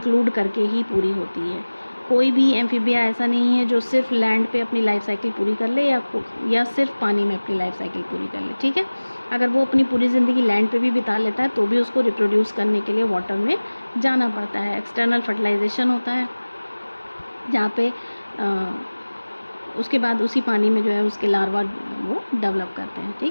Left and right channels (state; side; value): inverted; both; correlation -1.00